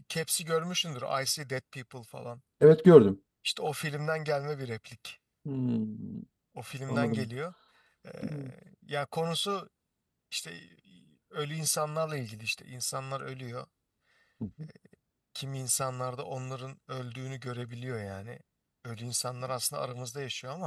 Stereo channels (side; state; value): both; identical; correlation 1.00